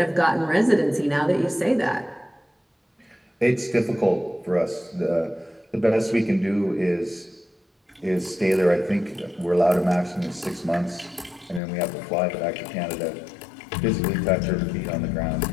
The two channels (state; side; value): drops out; right; at 11.6 s